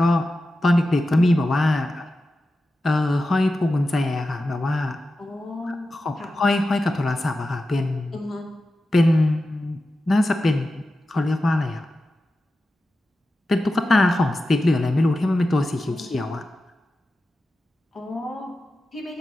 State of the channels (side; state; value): both; normal; correlation 0.92